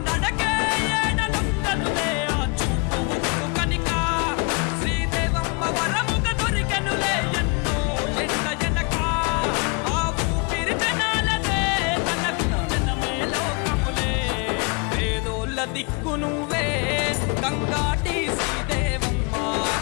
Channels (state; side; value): quieter; right; 31.9 dB